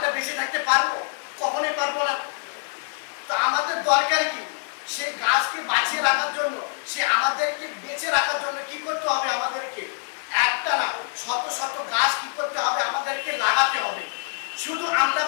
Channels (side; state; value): right; silent; digital silence